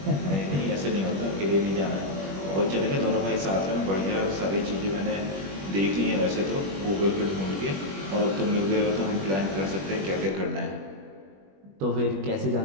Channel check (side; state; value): left; late; 21 ms